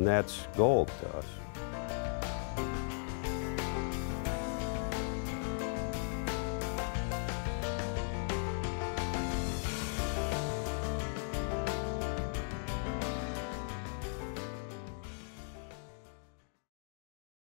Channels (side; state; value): right; silent; 53 dB below the other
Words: that's gold to us.